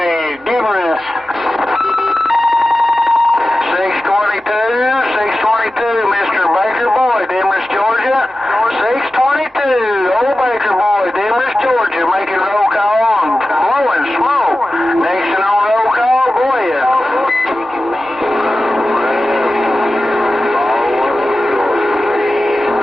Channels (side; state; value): both; normal; correlation 0.94